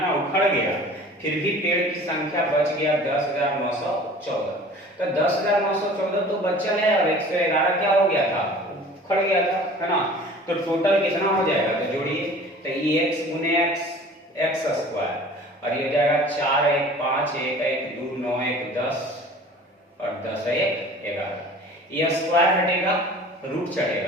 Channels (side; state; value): both; normal; correlation 0.45